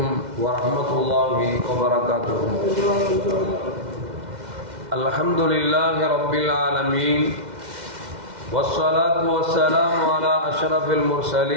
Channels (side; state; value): left; late; 2.1 ms